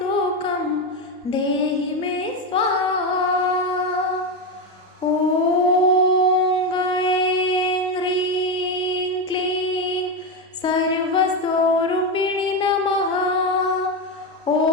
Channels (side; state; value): both; normal; correlation 0.12